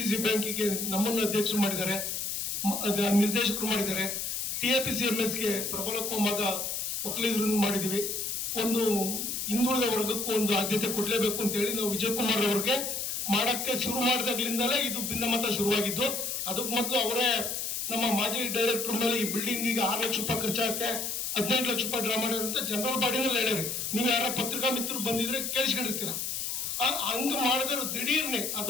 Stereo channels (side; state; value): left; noise; hiss, 2 dB below the sound